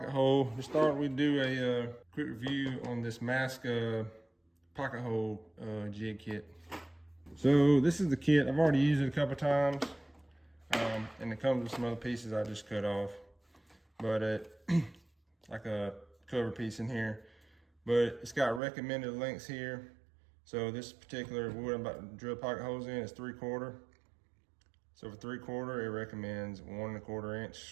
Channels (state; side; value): drops out; left; at 18.6 s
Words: hole. To start, we do a quick review on this Masca pocket hole jig kit. So this is the kit. I've already used it a couple times, and it comes with some other pieces I just cut off, but like a cover piece in here. But it's got recommended lengths here. So this particular wood I'm about to drill pocket holes in is 3/4. So for 3/4, it recommends 1 1/4 inch